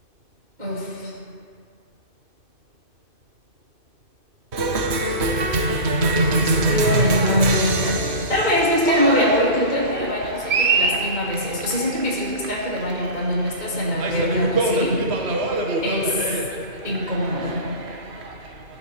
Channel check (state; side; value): late; left; 2.5 ms